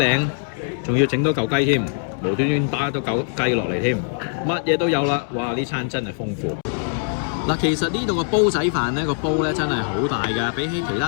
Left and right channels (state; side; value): silent; right; digital silence